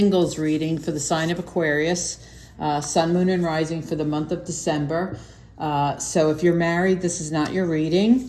reading for the sign of Aquarius, Sun, Moon, and Rising for the month of December. So if you're married, this is not your reading.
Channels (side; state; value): both; identical; correlation 1.00